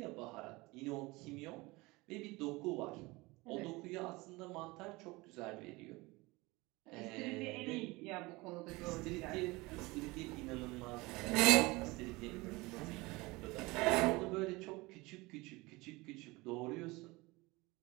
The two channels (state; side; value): quieter; left; 22.8 dB